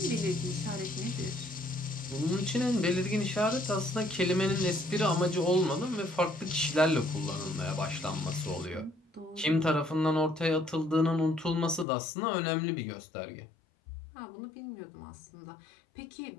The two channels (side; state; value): right; drops out; at 11.9 s